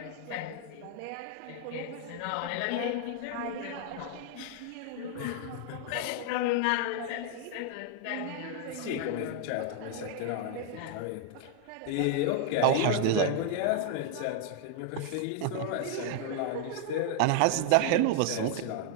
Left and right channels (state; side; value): different; both; correlation 0.00